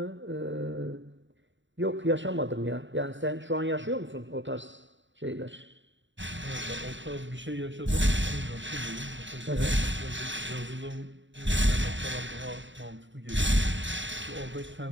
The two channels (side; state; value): left; late; 0.54 ms